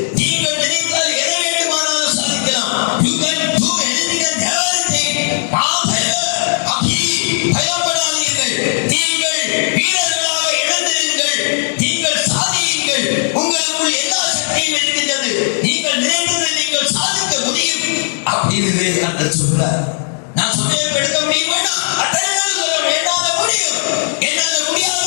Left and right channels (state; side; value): silent; right; 68 dB below the other